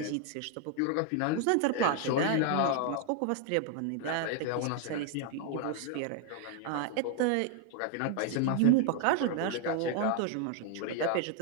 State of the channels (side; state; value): both; different; correlation 0.00